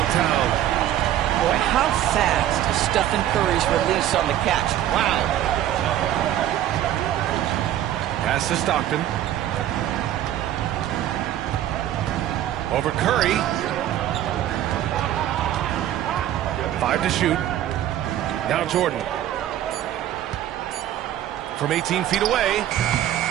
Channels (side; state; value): left; quieter; 12.1 dB